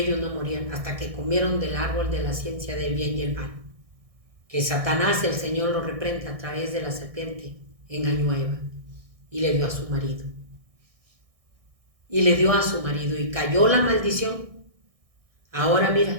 no morían hasta que comieron del árbol de la ciencia del bien y el mal. Que Satanás, el Señor, lo reprenda a través de la serpiente, engañó a Eva y le dio a su marido. Y cayó la maldición. Ahora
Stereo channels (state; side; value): late; left; 1.6 ms